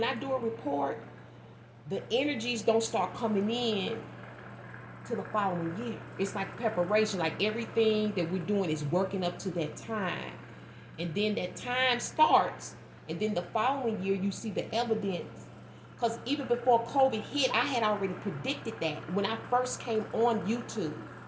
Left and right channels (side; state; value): both; identical; correlation 1.00